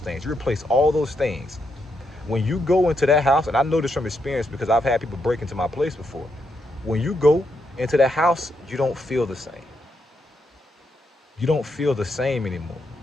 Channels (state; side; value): normal; both; correlation 0.80